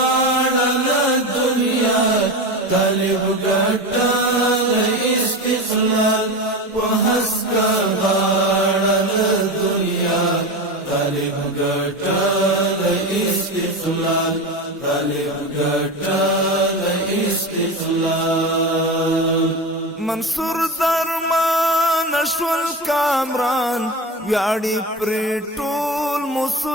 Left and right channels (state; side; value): normal; both; correlation 0.24